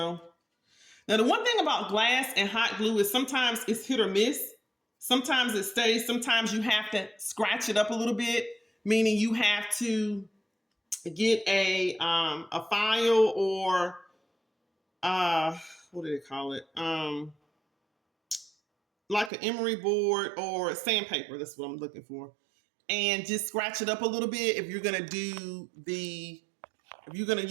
Now, the one thing about glass and hot glue is sometimes it's hit or miss. Sometimes it stays. Sometimes you have to scratch it up a little bit, meaning you have to get a file or what do they call it? Like an emery board or sandpaper. That's what I'm looking for. And just scratch it up a little bit if you're gonna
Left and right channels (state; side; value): drops out; left; at 19.3 s